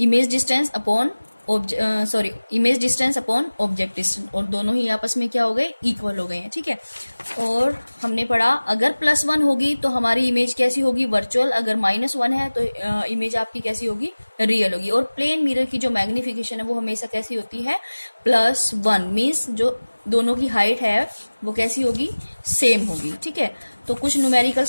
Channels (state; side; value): inverted; both; correlation -1.00